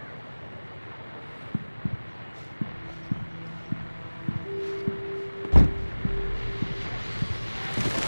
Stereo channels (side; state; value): both; inverted; correlation -1.00